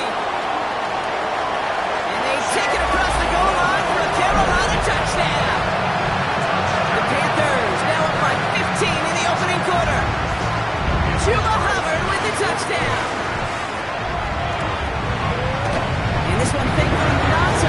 And they take it across the goal line for a Carolina touchdown. The Panthers now up by 15 in the opening quarter. Chuba Hubbard with the touchdown. This one thankfully not to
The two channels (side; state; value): both; identical; correlation 1.00